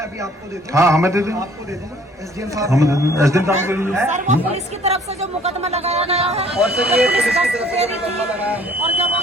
अभी आपको दे दूं। हाँ, हमें दे दें, आपको दे दूंगा, SDM साहब, हमें दे दें, SDM साहब के लिए। सर वो पुलिस की तरफ से जो मुकदमा लगाया गया है, और सर ये पुलिस की तरफ से मुकदमा लगाया है, और जब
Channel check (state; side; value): normal; both; correlation 0.57